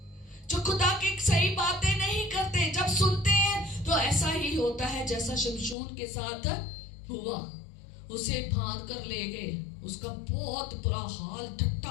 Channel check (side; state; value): right; drops out; at 5.8 s